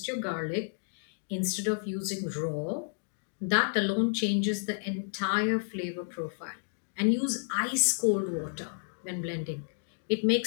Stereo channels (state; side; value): silent; right; digital silence